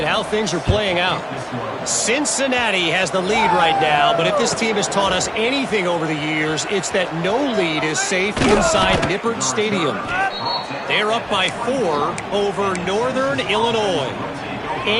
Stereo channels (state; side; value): identical; both; correlation 1.00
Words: how things are playing out. Cincinnati has the lead right now, but if this team has taught us anything over the years, it's that no lead is safe inside Nippert Stadium. They're up by 4 over Northern Illinois.